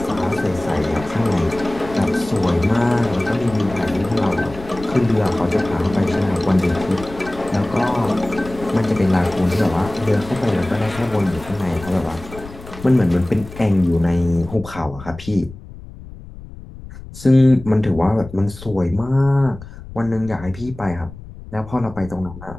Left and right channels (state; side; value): noise; left; rumble, 15 dB below the sound